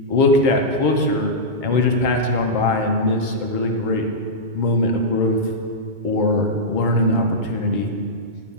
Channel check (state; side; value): late; left; 2.2 ms